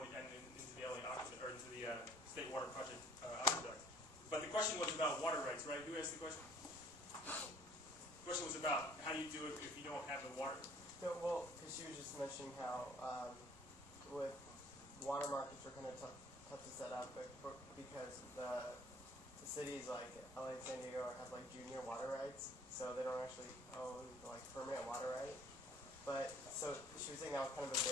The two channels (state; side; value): normal; both; correlation 0.55